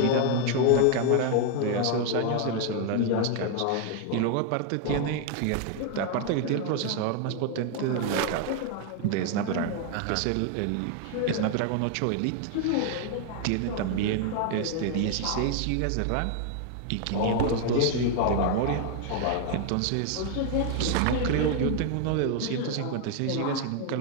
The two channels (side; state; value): both; different; correlation 0.00